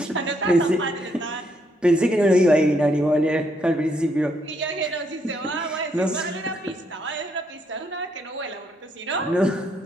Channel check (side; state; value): both; normal; correlation 0.74